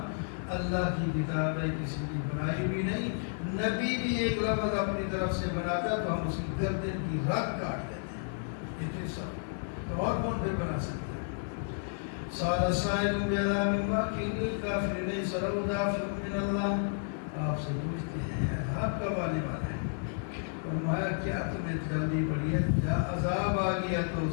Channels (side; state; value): right; silent; digital silence